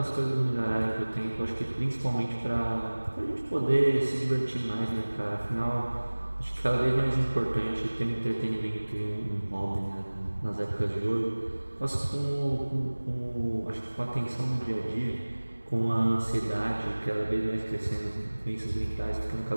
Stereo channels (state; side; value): inverted; both; correlation -1.00